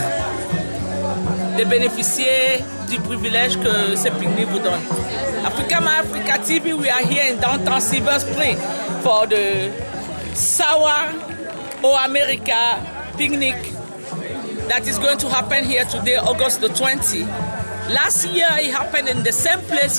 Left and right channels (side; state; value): both; inverted; correlation -1.00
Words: de bénéficier du privilège que ce pique-nique vous donne. Africa My Africa TV, we are here in downtown Silver Spring for the Sawa O America picnic that is going to happen here today, August the 20th. Last year it happened in the same place